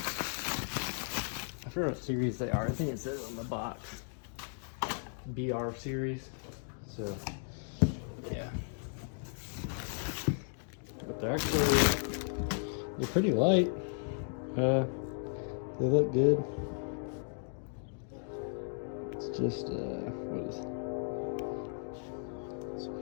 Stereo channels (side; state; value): right; silent; 54 dB below the other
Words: I forget what series they are. I think it says on the box BR series. So yeah, but they're pretty light. They look good. It's just what is it? It's